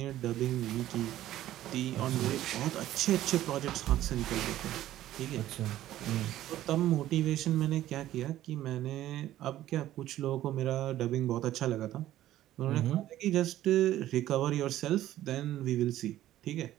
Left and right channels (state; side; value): quieter; left; 13.6 dB